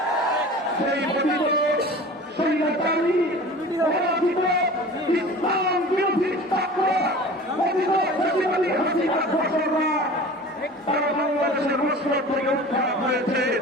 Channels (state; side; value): normal; both; correlation 0.39